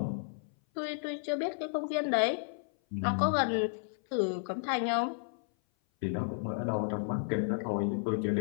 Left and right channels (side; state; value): right; silent; 56 dB below the other